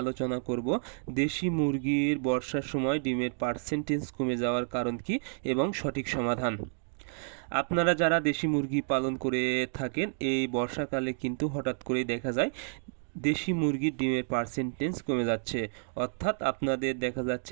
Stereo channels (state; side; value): silent; left; 58 dB below the other